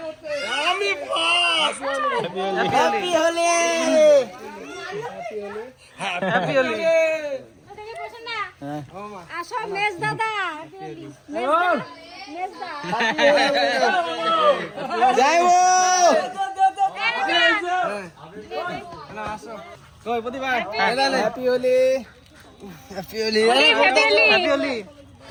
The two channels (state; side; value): identical; both; correlation 1.00